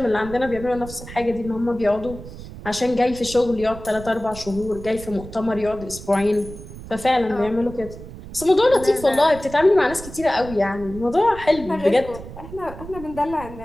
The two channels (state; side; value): noise; right; rumble, 14 dB below the sound